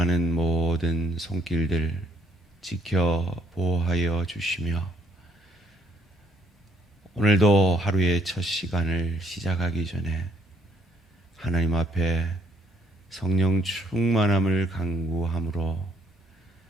모든 손길들 지켜 보호하여 주시며 오늘도 하루의 첫 시간을 시작하기 전에 하나님 앞에 성령 충만함을 간구함으로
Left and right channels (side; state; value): both; normal; correlation 0.68